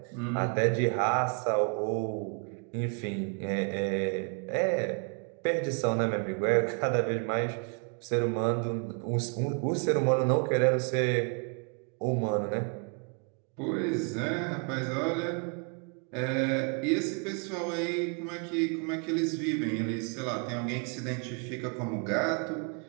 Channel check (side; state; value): left; quieter; 39.0 dB